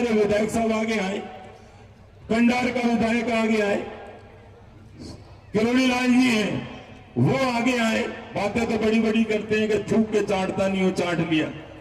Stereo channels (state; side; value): identical; both; correlation 1.00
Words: विधायक साहब आगे आए, कंडार का विधायक आगे आए, किरोड़ी लाल जी हैं वो आगे आए। बातें तो बड़ी बड़ी करते हैं कि थूक के चाटता नहीं हो, चाट लिया